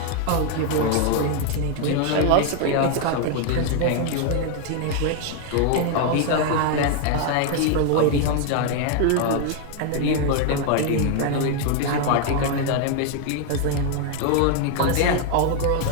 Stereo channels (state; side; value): different; both; correlation 0.00